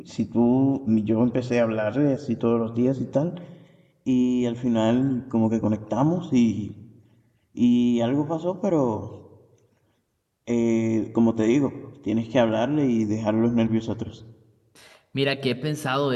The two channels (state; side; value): identical; both; correlation 1.00